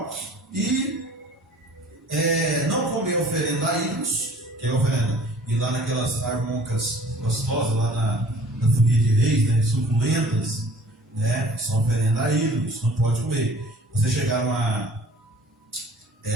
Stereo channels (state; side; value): normal; both; correlation 0.50